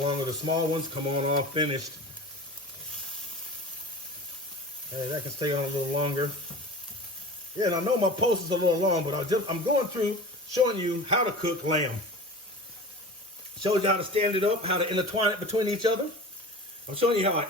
longer. The small ones come on all finished. Hey, that can stay on a little longer. Yeah, and I know my post is a little long, but I'm going through showing you how to cook lamb. Showed you how to stand it up, how to intertwine it between each other. I'm showing you how I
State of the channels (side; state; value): both; normal; correlation 0.35